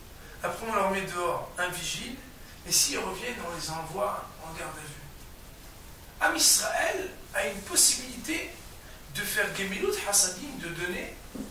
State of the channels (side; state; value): both; identical; correlation 1.00